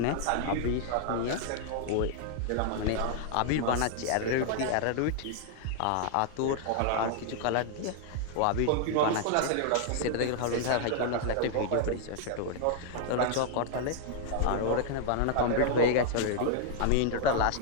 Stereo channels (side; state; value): both; different; correlation 0.00